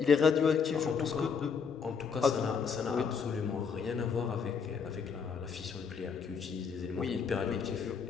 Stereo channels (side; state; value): right; quieter; 6.1 dB